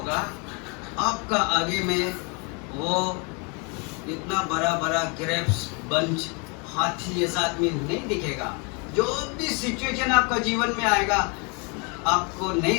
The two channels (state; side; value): quieter; right; 33.1 dB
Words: आपका आगे में, वो इतना बड़ा बड़ा ग्रेप्स बंच हाथी जैसा आदमी नहीं दिखेगा। जो भी सिचुएशन आपका जीवन में आएगा, आपको